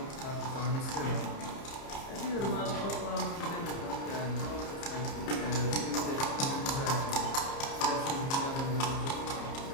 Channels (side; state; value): right; late; 30 ms